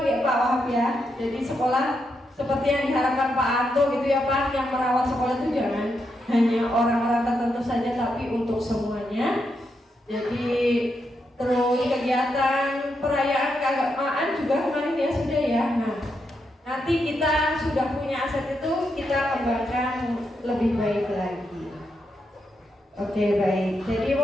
Pak Wahab ya. Jadi sekolah seperti yang diharapkan Pak Anto gitu ya Pak, yang merawat sekolah itu jangan hanya orang-orang tertentu saja tapi untuk semuanya. Jadi terus kegiatan perayaan keagamaan juga kemarin ya sudah ya. Nah, nanti kita sudah punya aset itu, kita kembangkan lebih baik lagi. Oke, baik. Jadi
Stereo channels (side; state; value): both; normal; correlation 0.83